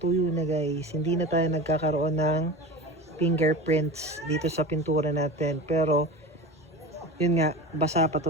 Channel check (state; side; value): normal; both; correlation 0.31